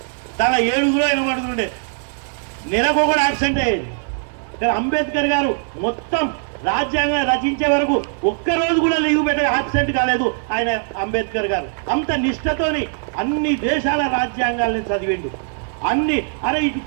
తన 7 ఆయన పడుతుండే, నెలకు కూడా యాక్సిడెంట్ అయ్యేది. కానీ అంబేద్కర్ గారు మొత్తం రాజ్యాంగం రచించే వరకు ఒక్కరోజు కూడా లీవ్ పెట్టే యాబ్సెంట్ కాలేదు ఆయన. అంబేద్కర్ గారు అంత నిష్ఠతోని అన్ని దేశాల రాజ్యాంగాలను చదివిండు. అన్ని అరే ఇటు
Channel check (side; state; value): left; silent; 60 dB below the other